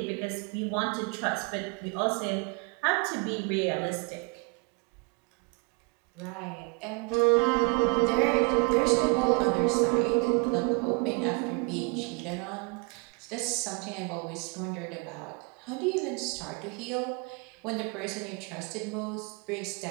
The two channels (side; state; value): left; quieter; 31.6 dB